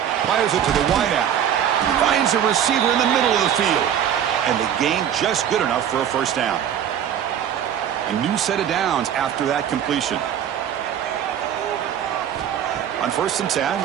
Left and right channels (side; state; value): left; quieter; 9.5 dB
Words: Fires it to the wideout. Finds a receiver in the middle of the field. And the gain just good enough for a 1st down. A new set of downs after that completion. On 1st and